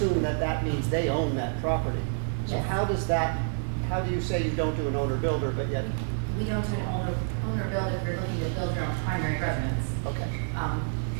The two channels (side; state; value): left; silent; digital silence